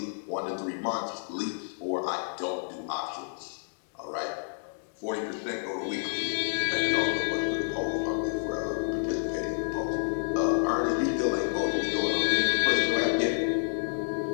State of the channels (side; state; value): right; silent; 58 dB below the other